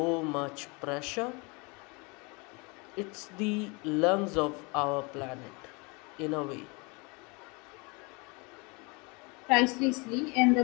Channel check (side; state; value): right; quieter; 29.1 dB